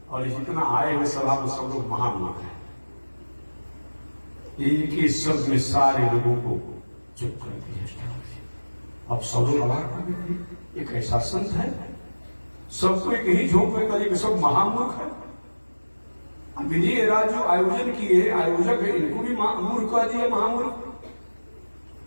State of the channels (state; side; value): inverted; both; correlation -1.00